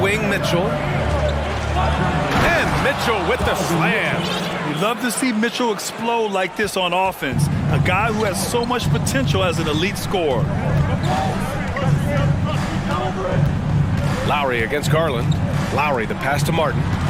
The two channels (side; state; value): both; identical; correlation 1.00